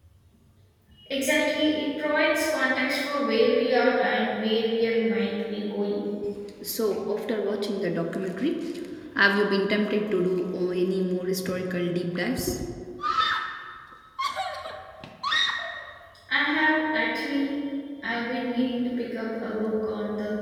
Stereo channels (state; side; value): identical; both; correlation 1.00